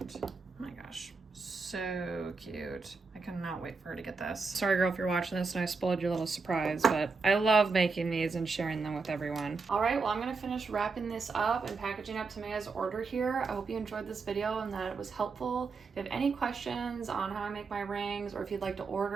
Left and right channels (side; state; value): left; quieter; 4.5 dB